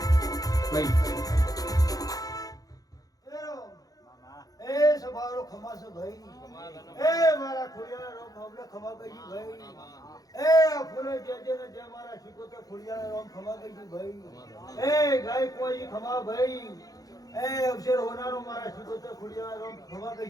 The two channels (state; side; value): late; right; 0.18 ms